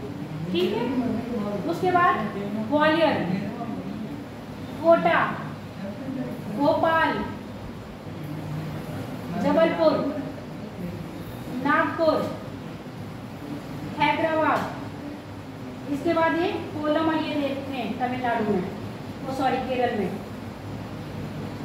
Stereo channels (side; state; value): both; identical; correlation 1.00